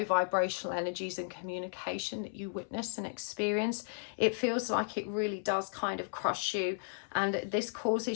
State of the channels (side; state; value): right; silent; 55 dB below the other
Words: vibrational energies and communication that you witness and experience. It feels like it really does kind of crush you, and this